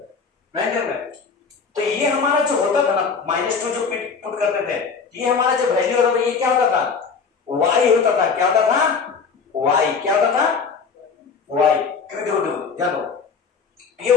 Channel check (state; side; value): quieter; right; 5.4 dB